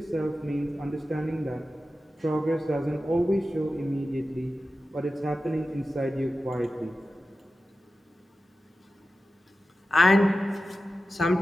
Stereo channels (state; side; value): normal; both; correlation 0.93